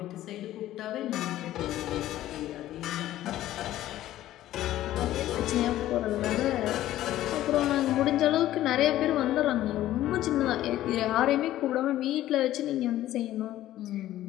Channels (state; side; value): quieter; right; 13.9 dB